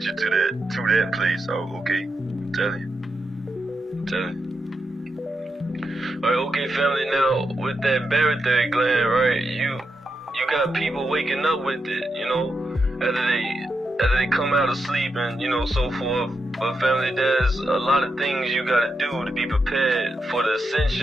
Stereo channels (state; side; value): normal; both; correlation 0.85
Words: you to that place. Oh, okay. I'm telling you. Alright, okay, family. Now with that barytheric gland, right? You got people waking up with it, after they come out of sleep and so forth. But family, there's a lot of things you gotta do to be prepared for the